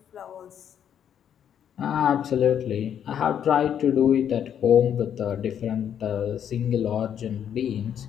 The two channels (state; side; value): quieter; right; 9.1 dB